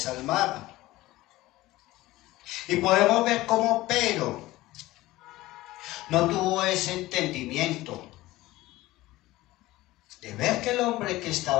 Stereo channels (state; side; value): quieter; right; 17.8 dB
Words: al mar. Y podemos ver cómo Pedro no tuvo ese entendimiento de ver que el hombre que